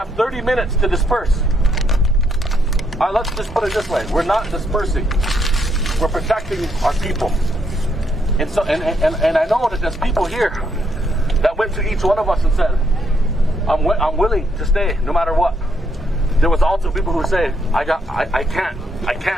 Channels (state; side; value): normal; both; correlation 0.75